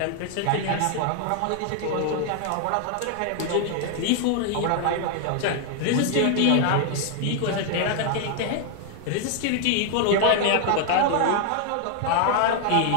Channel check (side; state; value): both; different; correlation 0.00